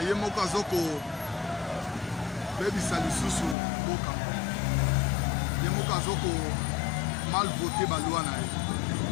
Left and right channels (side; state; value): right; drops out; at 3.6 s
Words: moko azoko baby salisusu boka. Ye moko azoko mal voté la loi.